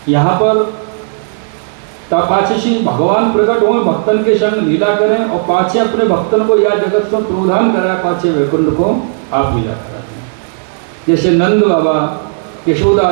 यहाँ पर पाछे भगवान प्रकट हुए, भक्तन के संग लीला करें, और पाछे अपने भक्तन को या जगत से प्रोधान करा, पाछे वैकुंठ को आप लीला कराते हैं। जैसे नंद बाबा, यशोदा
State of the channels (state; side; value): silent; left; digital silence